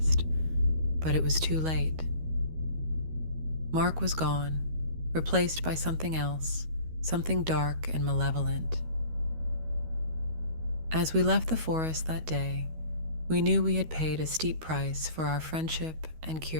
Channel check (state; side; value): late; left; 13 ms